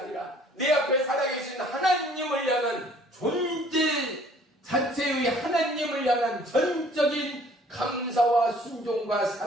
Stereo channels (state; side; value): normal; both; correlation 0.56